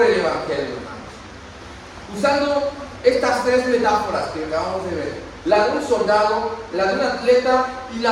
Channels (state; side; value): identical; both; correlation 1.00